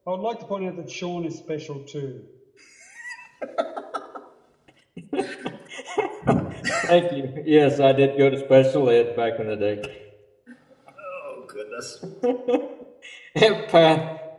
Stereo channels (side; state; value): both; identical; correlation 1.00